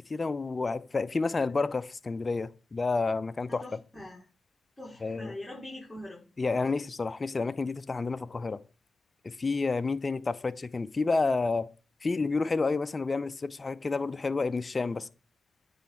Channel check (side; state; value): right; quieter; 3.4 dB